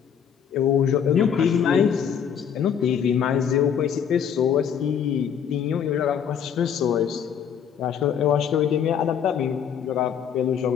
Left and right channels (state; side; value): quieter; right; 8.1 dB